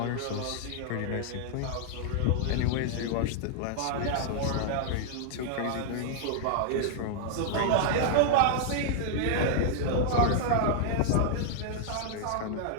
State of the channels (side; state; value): both; different; correlation -0.01